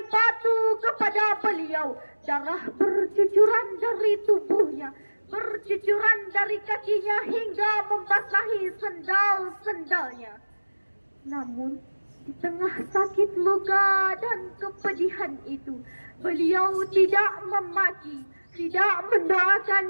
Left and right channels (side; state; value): both; inverted; correlation -1.00